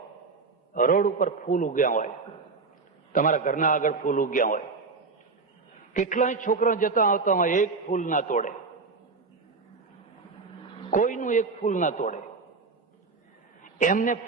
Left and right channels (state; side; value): quieter; left; 4.3 dB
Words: રોડ ઉપર ફૂલ ઉગ્યા હોય, તમારા ઘરના આગળ ફૂલ ઉગ્યા હોય, કેટલાય છોકરા જતા આવતા હોય, એક ફૂલ ના તોડે, કોઈનું એક ફૂલ ના તોડે. એમને